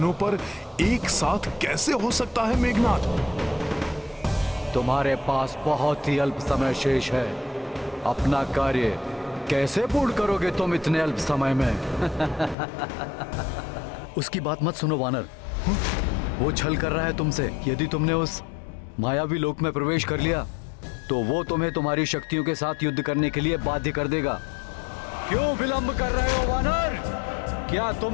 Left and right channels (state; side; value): drops out; right; at 12.6 s